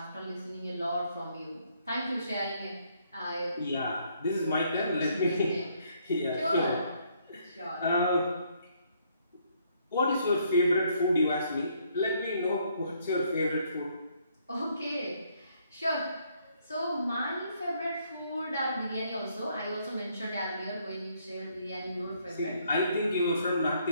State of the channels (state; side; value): inverted; both; correlation -0.69